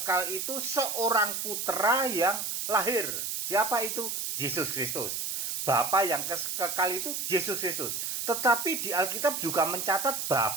itu seorang putra yang lahir. Siapa itu? Yesus Kristus. Bapa yang kekal itu Yesus Kristus. Tetapi di Alkitab juga mencatat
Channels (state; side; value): noise; right; hiss, 2 dB below the sound